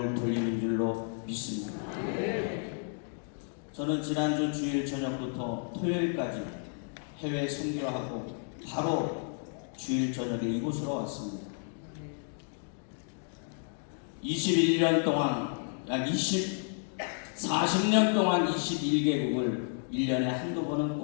돌리는 줄로 믿습니다. 저는 지난주 주일 저녁부터 토요일까지 해외 선교하고 바로 주일 저녁에 이곳으로 왔습니다. 21년 동안, 약 40년 동안 21개국을 1년에 한두 번은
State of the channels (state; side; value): silent; right; 57 dB below the other